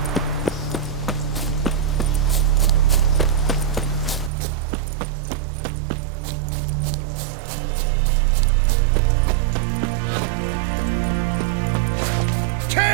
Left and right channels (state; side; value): drops out; left; at 4.3 s